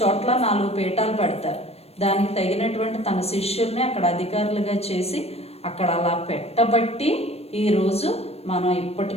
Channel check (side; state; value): right; late; 0.29 ms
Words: 4 పీఠాలు పెడతారు. దానికి తగినటువంటి తన శిష్యుల్ని అక్కడ అధికారులుగా చేసి అక్కడ అలా పెట్టబట్టి ఈరోజు మనం